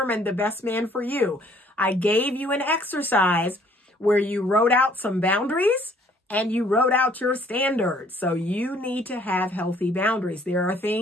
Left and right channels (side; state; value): both; normal; correlation 0.60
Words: the best man for you, I gave you an exercise where you wrote out some boundaries and you wrote out your standards. So you need to have healthy boundaries. There are